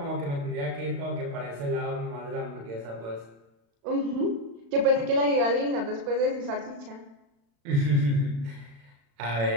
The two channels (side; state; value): left; late; 35 ms